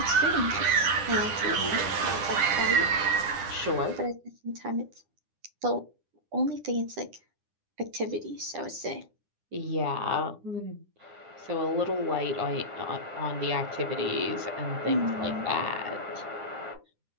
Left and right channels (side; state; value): left; late; 9.9 ms